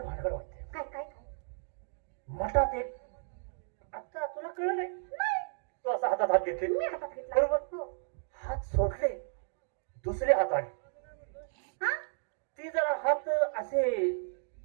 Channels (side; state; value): left; silent; digital silence